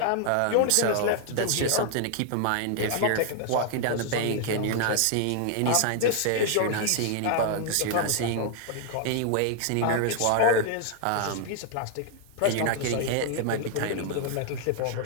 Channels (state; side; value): different; both; correlation 0.00